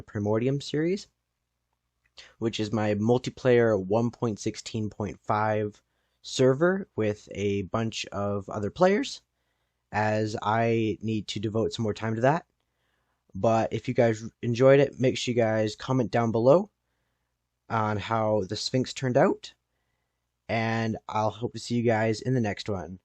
Primordium series. which is my multiplayer 1.16.5 server with a bunch of other players, as I need to devote some more time to that. But if you guys enjoyed it, make sure you guys comment down below on how the Sphinx turned out, and I'll hope to see you guys in the next one.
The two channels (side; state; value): both; identical; correlation 1.00